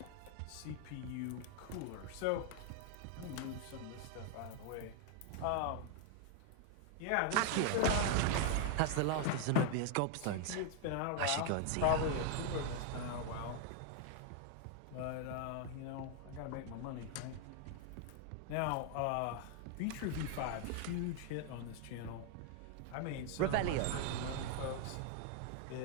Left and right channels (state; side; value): different; both; correlation 0.00